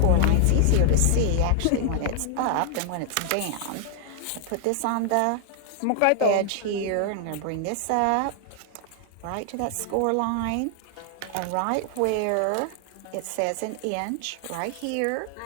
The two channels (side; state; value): both; different; correlation 0.00